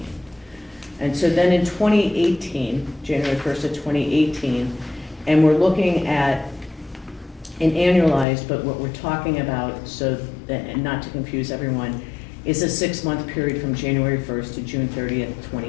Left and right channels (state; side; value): drops out; right; at 8.2 s